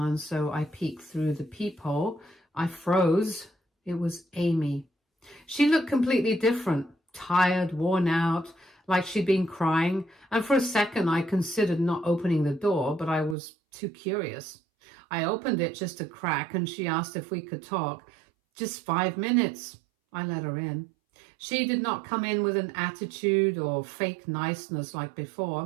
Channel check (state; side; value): drops out; left; at 13.4 s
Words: so I peeked through the peephole. I froze. It was Amy. She looked completely different, tired, worn out, like she'd been crying. And for a second, I considered not opening the door, but I was too curious. I opened it just a crack and she asked if we could talk. Just 5 minutes. I let her in. She did not come in with an attitude or fake niceness like